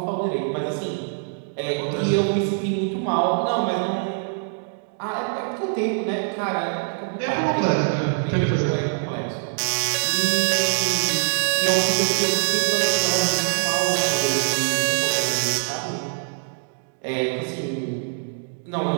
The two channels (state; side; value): silent; left; digital silence